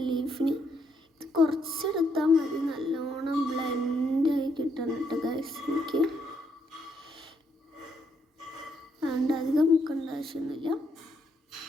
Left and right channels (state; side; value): normal; both; correlation 0.75